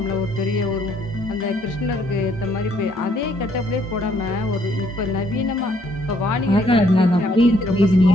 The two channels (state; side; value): normal; both; correlation 0.67